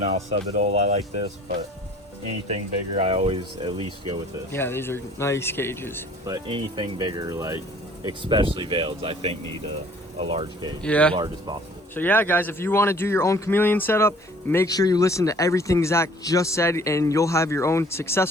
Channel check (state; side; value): normal; both; correlation 0.53